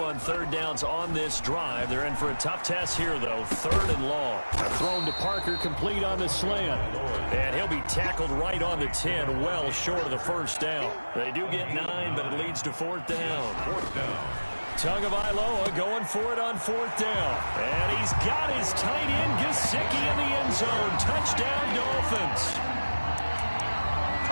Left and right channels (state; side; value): inverted; both; correlation -1.00